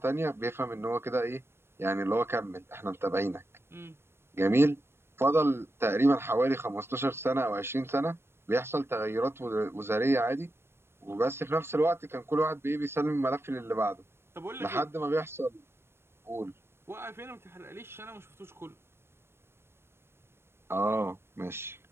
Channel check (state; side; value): late; left; 0.12 ms